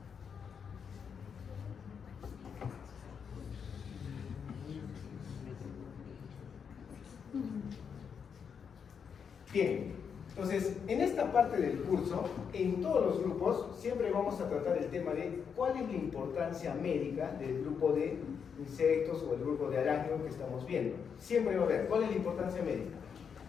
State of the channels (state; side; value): quieter; right; 6.8 dB